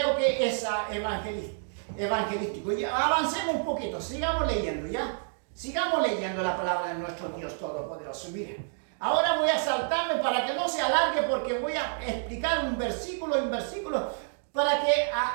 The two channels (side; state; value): left; silent; digital silence